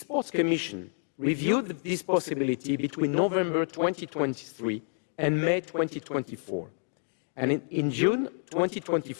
Commission reviewed this possibility between November 2023 and May 2024. And in June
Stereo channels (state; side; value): silent; right; 59 dB below the other